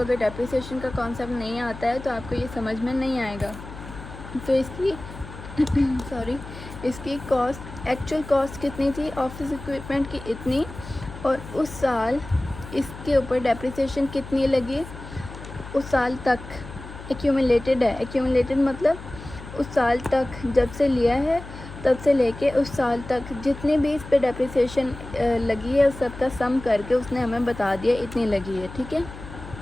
डेप्रिसिएशन का कॉन्सेप्ट नहीं आता है तो आपको ये समझ में नहीं आएगा। तो इसकी सॉरी, इसकी कॉस्ट, एक्चुअल कॉस्ट कितनी थी ऑफिस इक्विपमेंट की, इतनी, और उस साल इसके ऊपर डेप्रिसिएशन कितनी लगी उस साल तक, एक्यूमुलेटेड है। एक्यूमुलेटेड मतलब उस साल तक जब से लिया है तब से लेके उस साल तक जितनी भी इस पे डेप्रिसिएशन लगी है उस सब का सम करके उसने हमें बता दिया इतनी लगी है, ठीक है।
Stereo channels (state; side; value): noise; left; hum, 14 dB below the sound